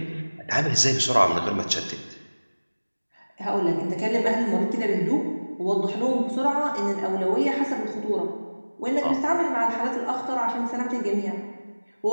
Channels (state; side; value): inverted; both; correlation -1.00